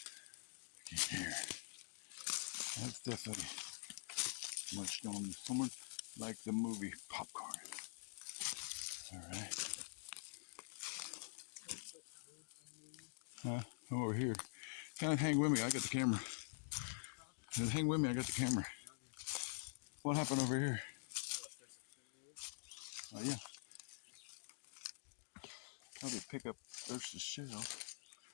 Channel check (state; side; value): silent; right; digital silence